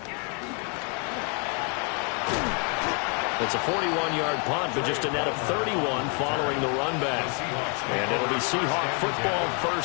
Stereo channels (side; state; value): right; quieter; 37.7 dB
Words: It's a 41-yard punt, but just a net of 31 following the run back. And it'll be SeaHAWK football,